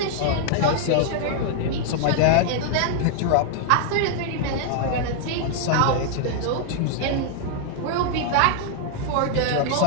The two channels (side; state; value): both; different; correlation 0.00